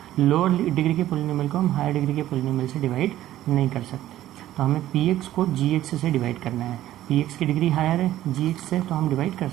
लोअर डिग्री के पोलिनोमियल को हम हायर डिग्री के पोलिनोमियल से डिवाइड नहीं कर सकते। तो हमें px को gx से डिवाइड करना है। px की डिग्री हायर है gx से, तो हम डिवाइड कर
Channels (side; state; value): left; quieter; 13.7 dB